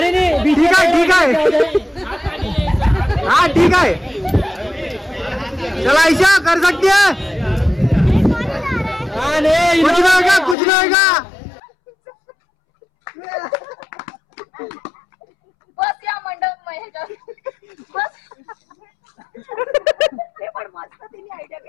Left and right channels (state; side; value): drops out; right; at 10.6 s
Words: नाही ठीक आहे ठीक आहे. हा ठीक आहे. चला आयशा कर सकती है. कुछ नहीं होगा कुछ नहीं होगा. बस या मंडप बस. ते पण मस्त तिने आयडिया